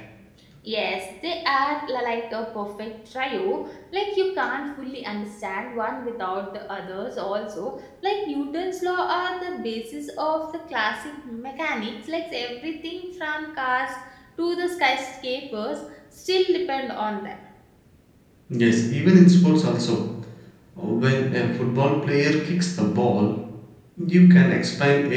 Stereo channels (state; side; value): identical; both; correlation 1.00